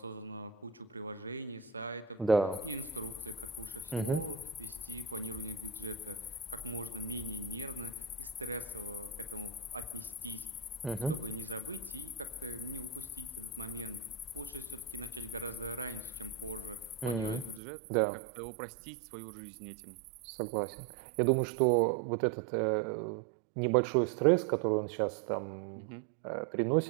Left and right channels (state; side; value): drops out; left; at 17.6 s